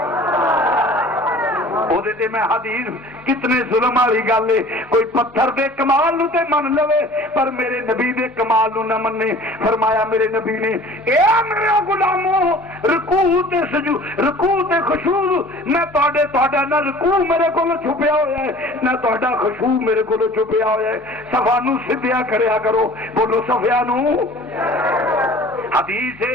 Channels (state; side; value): normal; both; correlation 0.46